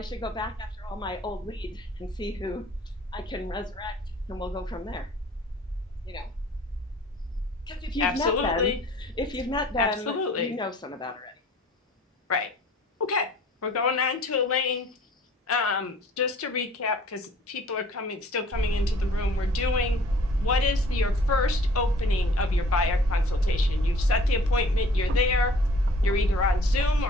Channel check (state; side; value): normal; both; correlation 0.52